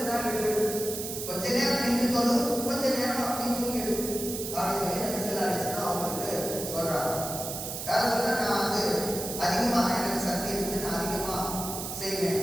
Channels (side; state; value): right; noise; hiss, 6 dB below the sound